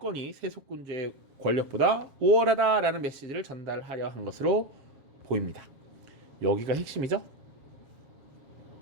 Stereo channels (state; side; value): late; left; 7.3 ms